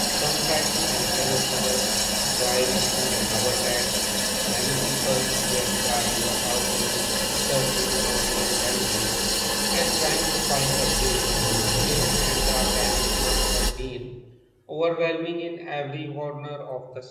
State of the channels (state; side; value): identical; both; correlation 1.00